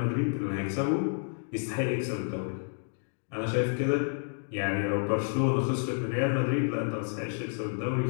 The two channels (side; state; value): right; silent; 58 dB below the other